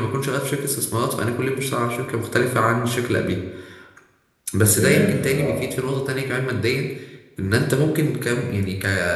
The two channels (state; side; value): identical; both; correlation 1.00